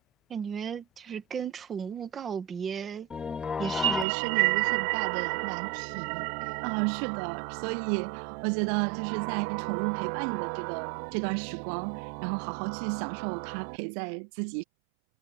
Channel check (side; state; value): left; drops out; at 4.0 s